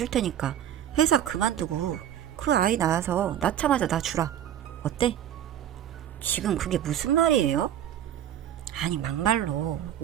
테니까 회사 그만두고 그 아이 낳아서 낳자마자 나 주라. 어때? 지금 그게 무슨 말이에요? 아니 막말로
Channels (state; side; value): quieter; left; 10.8 dB